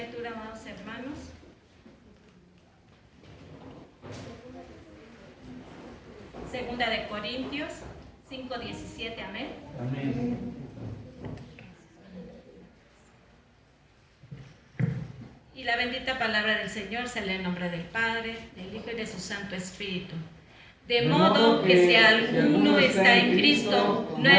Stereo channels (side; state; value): both; identical; correlation 1.00